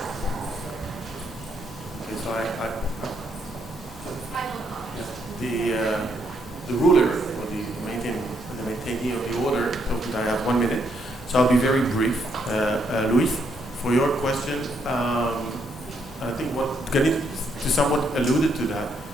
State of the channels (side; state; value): both; normal; correlation 0.74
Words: Okay, so Final comment. the ruler or the maintainee of the order told me that I have 1 minute, so I'll be very brief. Luis, for your question, I think what Ganit somewhat alluded to that.